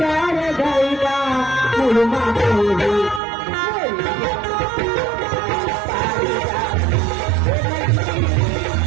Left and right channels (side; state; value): left; drops out; at 3.2 s